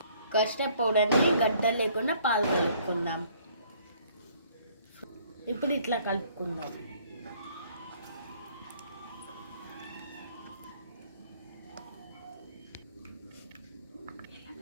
కస్టర్డ్ పౌడర్ని గడ్డలు లేకుండా పాలు కలుపుకుందాం. ఇప్పుడు ఇట్లా కలుపుకుందాం.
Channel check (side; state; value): both; inverted; correlation -0.61